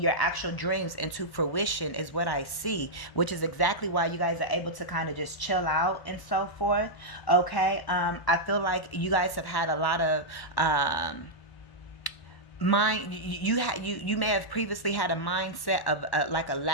actual dreams into fruition is what I see, which is exactly why you guys are able to kind of just chill out and so forth, okay? I feel like you guys have had a lot of you may have previously had a mindset of like a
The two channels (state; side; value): late; right; 1.1 ms